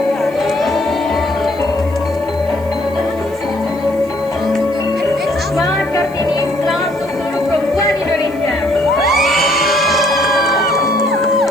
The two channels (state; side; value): noise; right; hiss, 25 dB below the sound